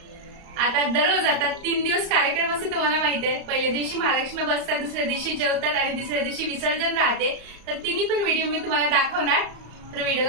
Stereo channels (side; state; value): left; late; 34 ms